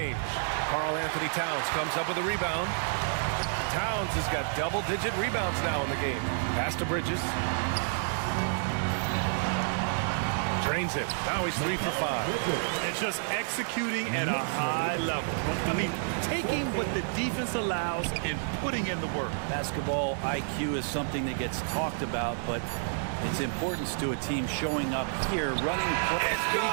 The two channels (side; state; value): left; silent; digital silence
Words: Karl-Anthony Towns comes up with a rebound. Towns has got double-digit rebounds now in the game. Pass to Bridges. Drains it. Now he's 3 for 5. And just executing at a high level. I mean, taking what the defense allows and putting in the work. Basketball IQ is something that gets talked about, but its importance to a team showing up here, running plays. Can he